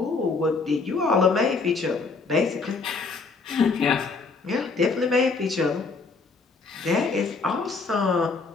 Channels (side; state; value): right; quieter; 4.3 dB